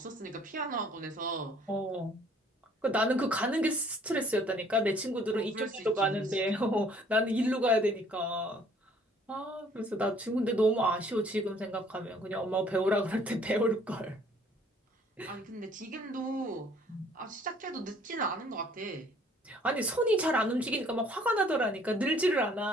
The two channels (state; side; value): normal; both; correlation 0.58